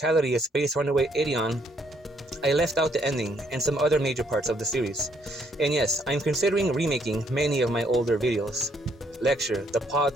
of Space Runaway Ideon, I left out the ending and some other major parts of the series. And yes, I'm considering remaking many of my older videos. Lecture, the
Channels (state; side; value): normal; both; correlation 0.70